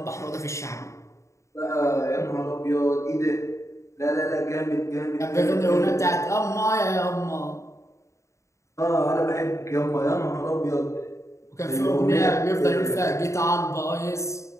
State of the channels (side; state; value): right; late; 0.14 ms